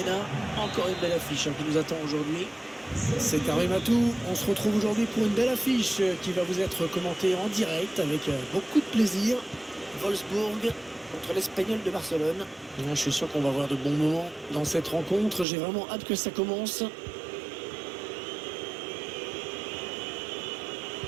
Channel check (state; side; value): drops out; left; at 15.5 s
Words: Encore une belle affiche qui nous attend aujourd'hui. C'est Karim Atou, on se retrouve aujourd'hui pour une belle affiche qui va vous être commentée en direct avec beaucoup de plaisir. Wolfsburg contre l'Espagnol de Barcelone. Je suis sûr qu'on va avoir de bons moments dans cette rencontre, j'ai vraiment hâte que ça commence.